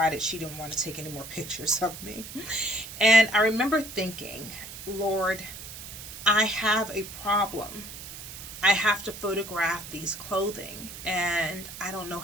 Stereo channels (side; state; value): right; noise; hiss, 12 dB below the sound